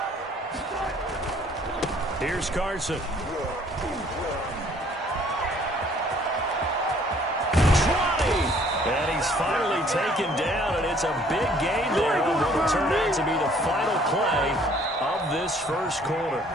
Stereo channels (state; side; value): normal; both; correlation 0.59